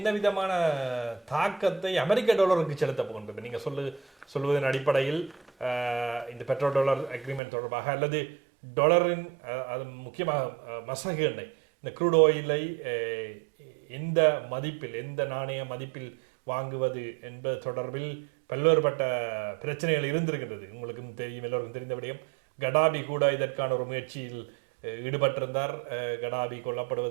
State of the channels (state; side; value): drops out; left; at 7.4 s